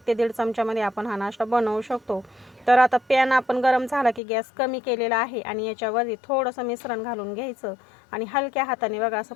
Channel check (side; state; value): right; drops out; at 4.2 s